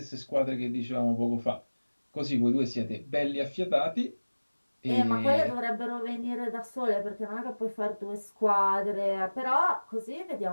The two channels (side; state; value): both; inverted; correlation -1.00